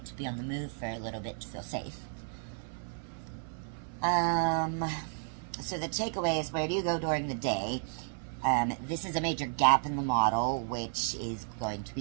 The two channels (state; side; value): silent; left; 56 dB below the other